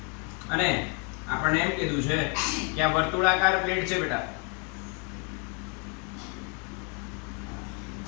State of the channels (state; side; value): quieter; right; 36.9 dB